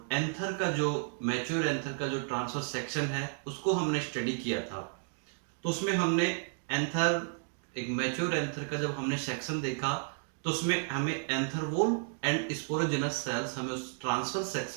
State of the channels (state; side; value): silent; left; 56 dB below the other